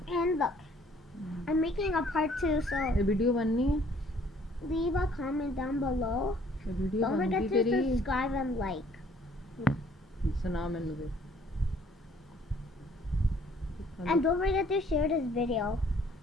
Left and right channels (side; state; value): both; normal; correlation 0.60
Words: and look I'm making a part 2 so video leave a comment down below. Don't forget to subscribe and like. And don't forget to share this video.